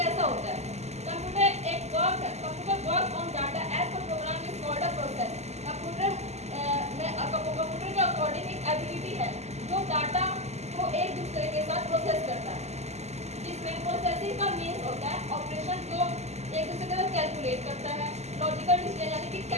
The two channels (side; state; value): left; late; 0.32 ms